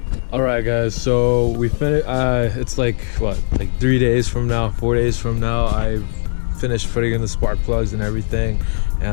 Alright guys, so we finished. It's like 3 days from now, 4 days from now, I finished putting in the spark plugs and everything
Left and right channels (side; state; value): right; silent; 67 dB below the other